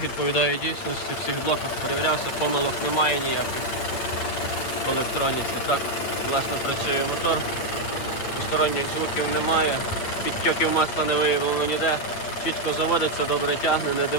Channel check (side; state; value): right; late; 8.9 ms